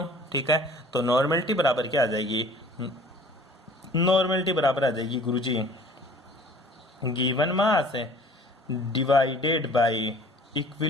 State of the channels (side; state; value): both; normal; correlation 0.50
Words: ठीक है। तो नॉर्मलिटी बराबर क्या आ जाएगी, नॉर्मलिटी बराबर आ जाएगी गुरुजी given mass divided by